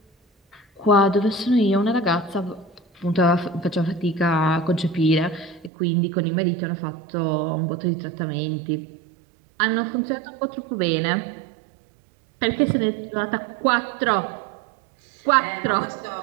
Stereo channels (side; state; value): left; drops out; at 5.7 s